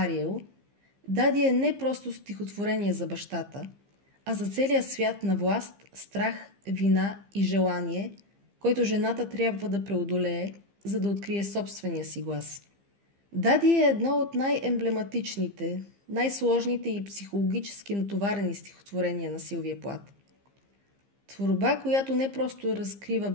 «Дади» е не просто стихотворение за бащата, а за целия свят на власт, страх, вина и желание, който жената трябва да преодолее, за да открие собствения си глас. «Дади» е едно от най-емблематичните, най-сложните и психологически натоварени стихотворения на Силвия Плат. Творба, която не просто разкрива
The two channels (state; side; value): late; left; 15 ms